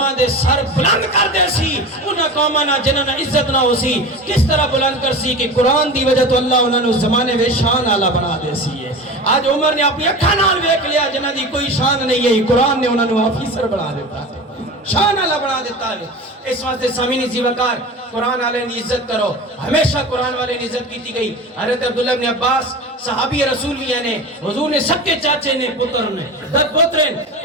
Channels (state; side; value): normal; both; correlation 0.31